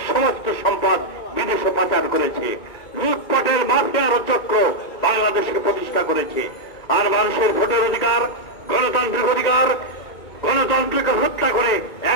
সমস্ত সম্পদ বিদেশে পাচার করেছে। লুটপাটের মাফিয়ার চক্র বাংলাদেশকে প্রতিষ্ঠা করেছে। আর মানুষের ভোটের অধিকার, গণতান্ত্রিক অধিকার, গণতন্ত্রকে হত্যা করে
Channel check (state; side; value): late; right; 2.2 ms